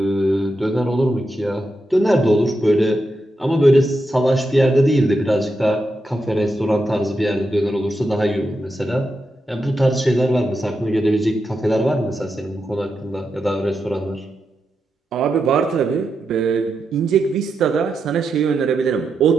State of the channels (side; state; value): both; normal; correlation 0.86